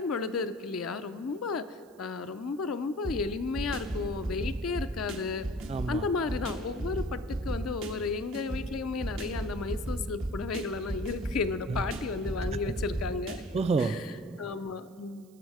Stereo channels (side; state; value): right; noise; hiss, 29 dB below the sound